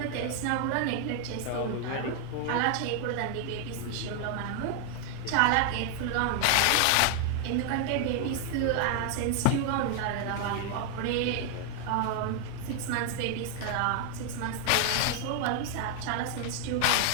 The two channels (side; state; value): both; different; correlation 0.00